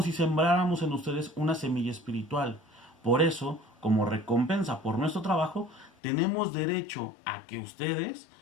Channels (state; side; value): drops out; right; at 5.9 s